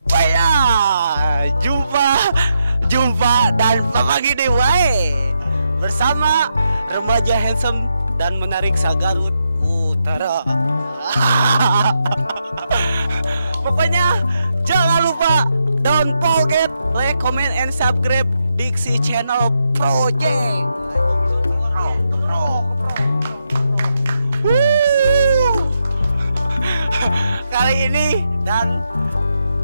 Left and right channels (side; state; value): both; inverted; correlation -0.82